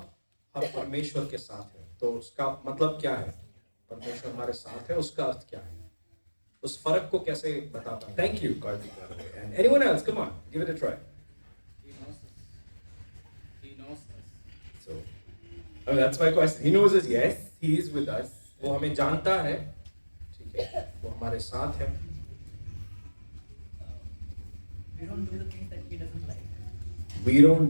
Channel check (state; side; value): inverted; both; correlation -1.00